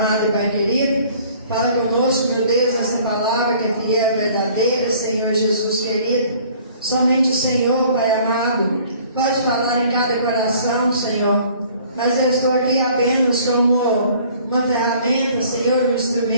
e Pai querido. Fala conosco, meu Deus, essa palavra que é fiel e verdadeira, Senhor Jesus querido. Somente o Senhor, Pai amado, pode falar em cada coração, Senhor. Mas eu estou aqui apenas como uma ferramenta, Senhor, um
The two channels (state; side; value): inverted; both; correlation -0.54